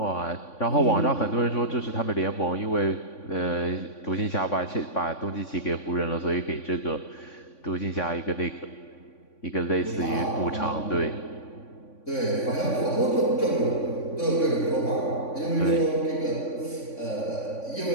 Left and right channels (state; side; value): late; right; 3.5 ms